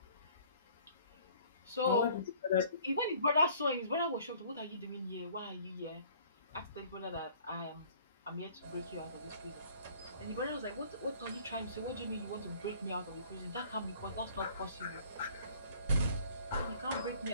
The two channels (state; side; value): inverted; both; correlation -0.55